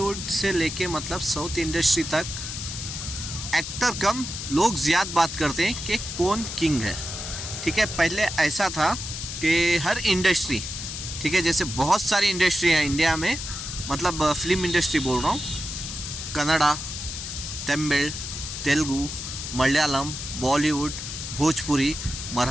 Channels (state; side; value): noise; left; hiss, 7 dB below the sound